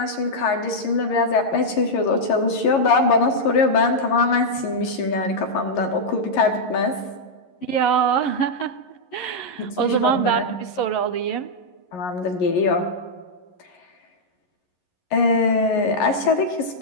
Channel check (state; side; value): late; right; 11 ms